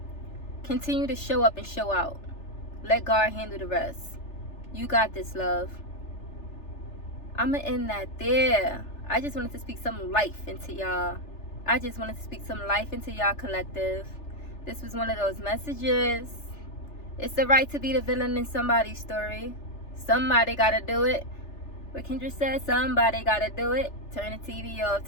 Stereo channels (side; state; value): right; late; 3.3 ms